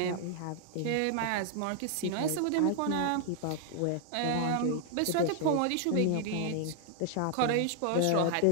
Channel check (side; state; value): both; different; correlation 0.00